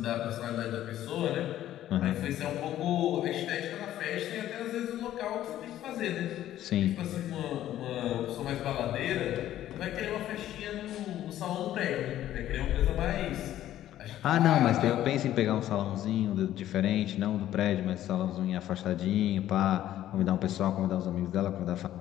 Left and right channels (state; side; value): quieter; right; 12.7 dB